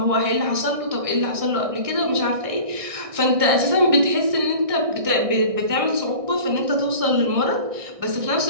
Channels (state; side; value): late; left; 1.6 ms